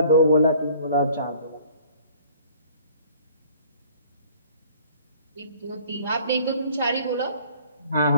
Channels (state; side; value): inverted; both; correlation -0.54